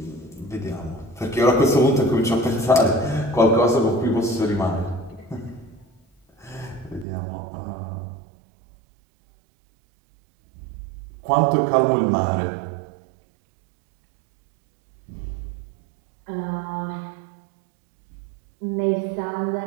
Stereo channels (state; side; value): drops out; left; at 7.1 s